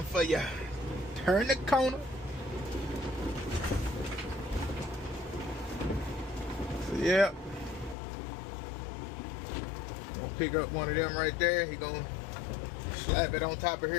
for you. Turn the corner. So yeah. Gonna pick up one of them right there. He gonna slap it on top of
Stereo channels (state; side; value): drops out; right; at 8.0 s